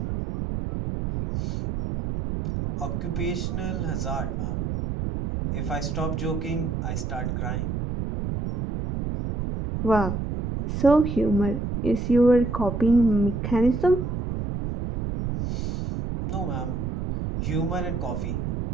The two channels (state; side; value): noise; right; rumble, 3 dB below the sound